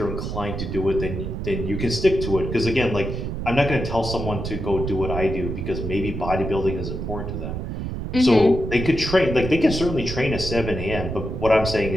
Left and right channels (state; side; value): noise; right; rumble, 5 dB below the sound